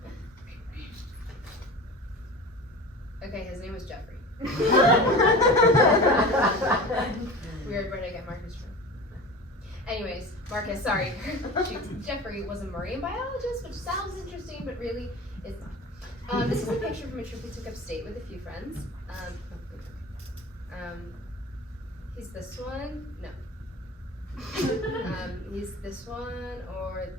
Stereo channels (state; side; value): normal; both; correlation 0.34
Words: okay, his name was Jeffrey. Weird, where did I get Marcus from? Anyways, Marcus, sorry. Jeffrey was a marine biologist, which sounds interesting, but really is not. This is a picture from a trip we took upstate with a few friends. He's this one. No. He's this one or